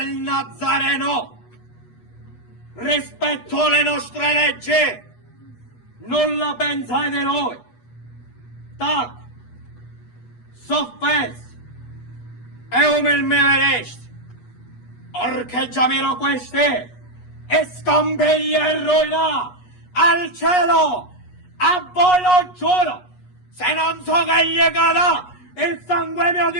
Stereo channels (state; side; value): late; right; 8.3 ms